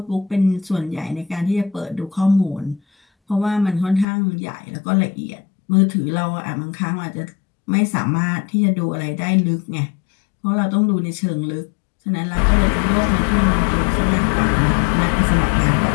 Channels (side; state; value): right; drops out; at 4.0 s